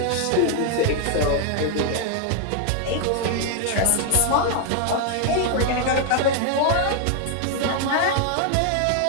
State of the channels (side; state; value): both; different; correlation 0.00